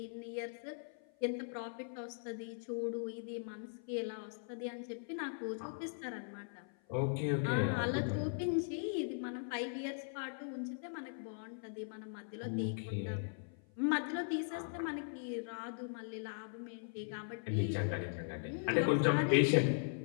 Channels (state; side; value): silent; right; 52 dB below the other